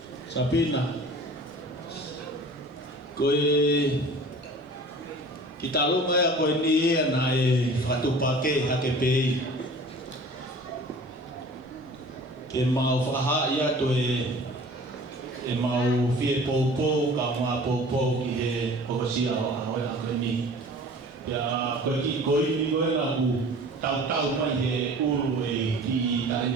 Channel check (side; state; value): both; normal; correlation 0.44